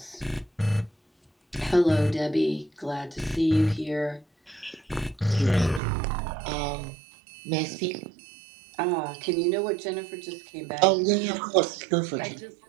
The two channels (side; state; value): left; drops out; at 5.8 s